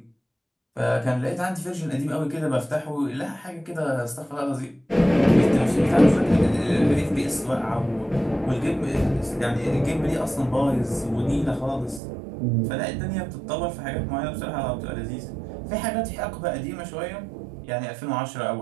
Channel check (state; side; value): drops out; left; at 12.0 s